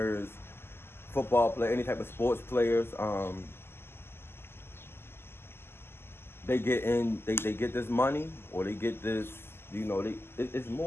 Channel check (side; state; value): right; late; 0.12 ms